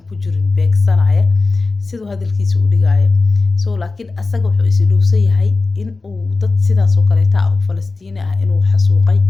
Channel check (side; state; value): right; quieter; 3.7 dB